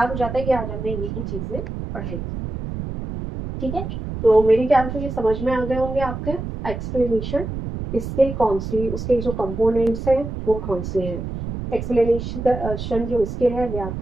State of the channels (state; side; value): noise; right; rumble, 6 dB below the sound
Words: हो जाता है कि आज हमने यही चीजें पढ़ाई। ठीक है, तो मेरे ख्याल से ये समझ में आ गए होंगे आपके एक्सप्लेनेशन, इसके कौन सी, उसके जो कंपोनेंट्स हैं वो कौन से हैं। एक्सप्लेनेशन जो स्किल है,